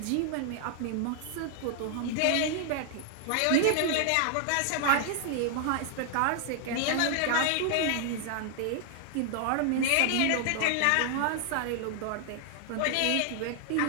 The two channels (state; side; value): different; both; correlation 0.00